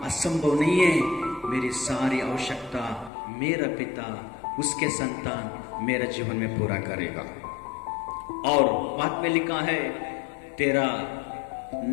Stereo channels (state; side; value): drops out; right; at 3.1 s